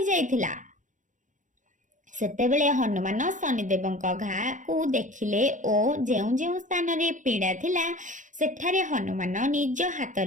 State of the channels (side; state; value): left; late; 0.37 ms